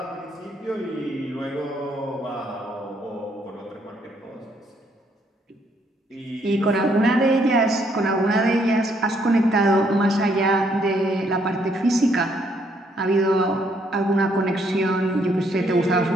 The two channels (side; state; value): both; normal; correlation 0.70